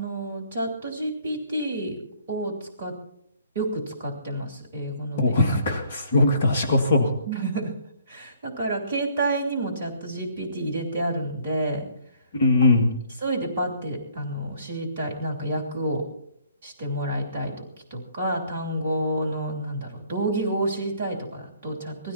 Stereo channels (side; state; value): both; inverted; correlation -0.60